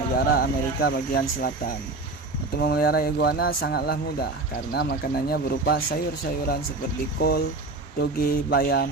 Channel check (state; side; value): quieter; left; 3.3 dB